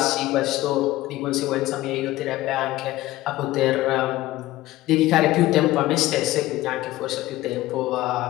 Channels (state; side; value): quieter; right; 16.9 dB